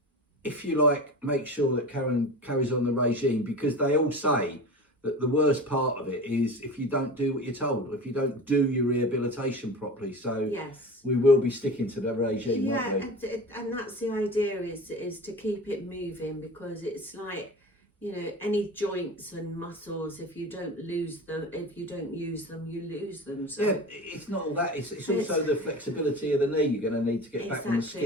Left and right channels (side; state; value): both; normal; correlation 0.33